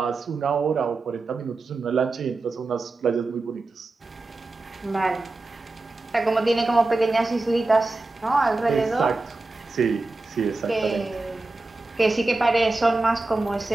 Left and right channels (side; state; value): left; quieter; 3.2 dB